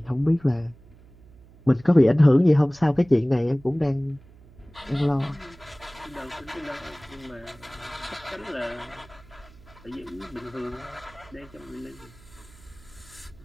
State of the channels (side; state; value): right; noise; hum, 24 dB below the sound